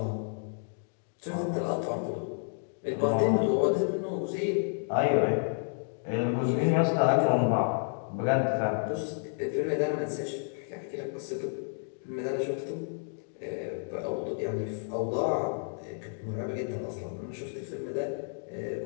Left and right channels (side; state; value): right; silent; digital silence